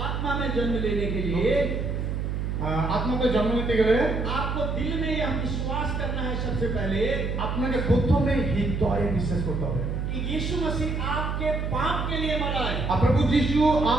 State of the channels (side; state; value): right; noise; hum, 2 dB below the sound